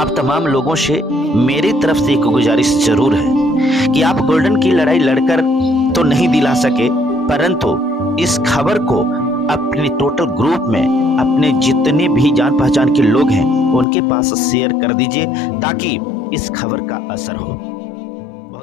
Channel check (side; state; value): right; drops out; at 13.9 s